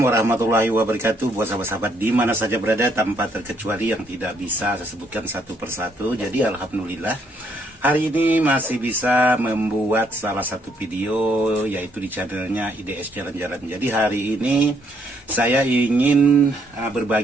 warahmatullahi wabarakatuh. Buat sahabat-sahabat di mana saja berada tanpa terkecuali yang tidak bisa saya sebutkan satu persatu. Jadi alhamdulillah hari ini masih bisa membuat salah satu video yaitu di channelnya IDS Jalan-Jalan. Jadi hari ini saya ingin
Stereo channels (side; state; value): both; normal; correlation 0.71